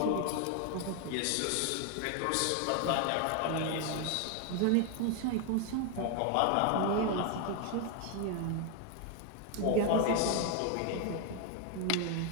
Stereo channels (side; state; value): both; different; correlation 0.01